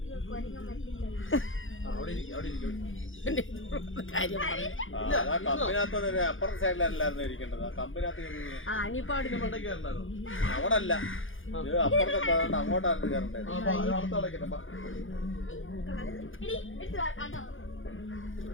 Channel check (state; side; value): late; right; 0.58 ms